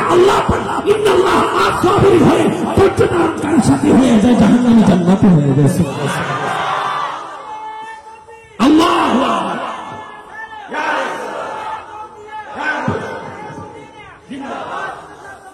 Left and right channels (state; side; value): identical; both; correlation 1.00